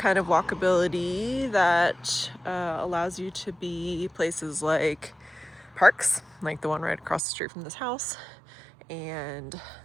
of walkability that allows you to be places like parks, like the one right across the street from this house, and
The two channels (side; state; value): left; drops out; at 7.2 s